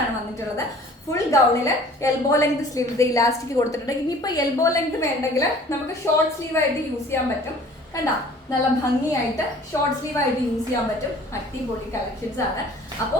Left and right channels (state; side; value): normal; both; correlation 0.50